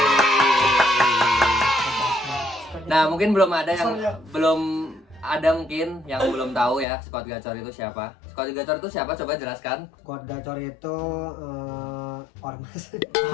Nah, mungkin belum ada mungkin yang belum tahu ya Squad Gacor itu siapa. Squad Gacor itu siapa? Coba jelaskan. Squad Gacor itu ormas.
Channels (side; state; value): right; drops out; at 6.9 s